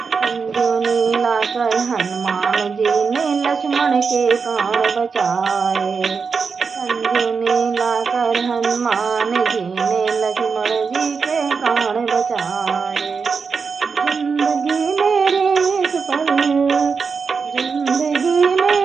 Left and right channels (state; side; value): quieter; left; 5.3 dB